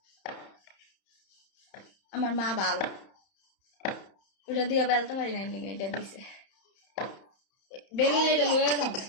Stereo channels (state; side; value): late; right; 31 ms